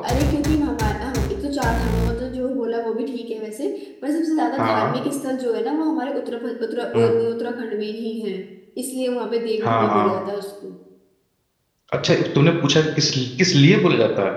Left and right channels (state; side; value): identical; both; correlation 1.00